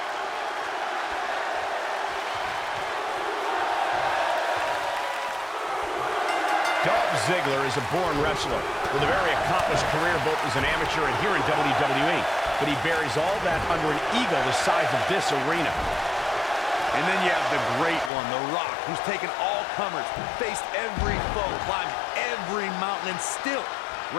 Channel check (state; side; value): drops out; right; at 18.1 s